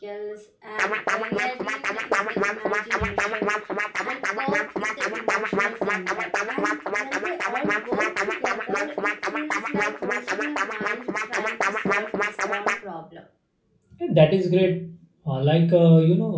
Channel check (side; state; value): both; identical; correlation 1.00